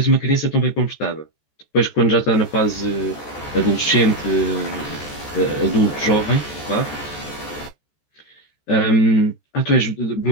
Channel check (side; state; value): right; late; 14 ms